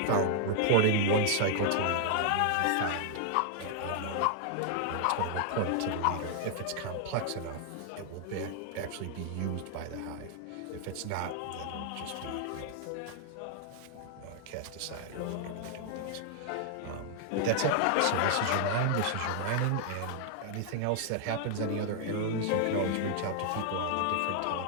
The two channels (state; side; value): different; both; correlation 0.00